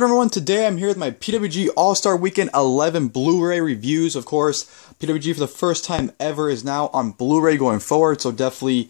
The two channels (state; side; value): silent; right; 62 dB below the other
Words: everyone? Today I'm here with my PWG All-Star Weekend 11 Blu-ray reviews. Of course, PWG for the first time ever is now on Blu-ray going forward, so definitely,